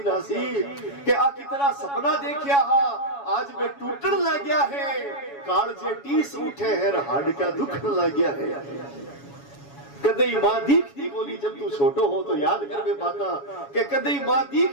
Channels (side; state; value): right; late; 7.1 ms